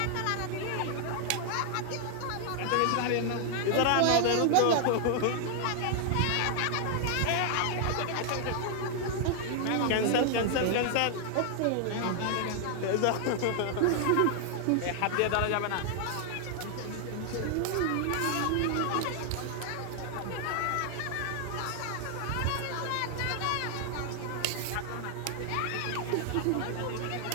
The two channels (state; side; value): different; both; correlation 0.00